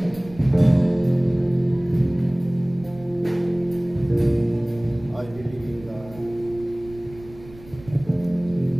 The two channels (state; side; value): noise; right; rumble, 19 dB below the sound